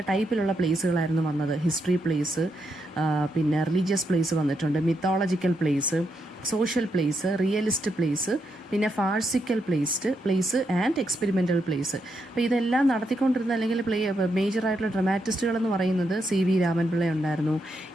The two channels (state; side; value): normal; both; correlation 0.81